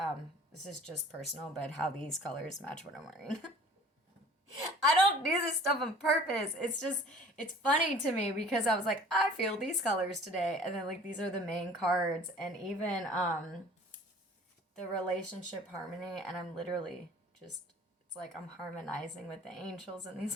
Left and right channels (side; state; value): both; normal; correlation 0.48